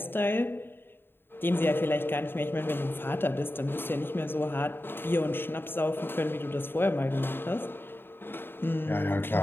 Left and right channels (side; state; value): right; late; 0.10 ms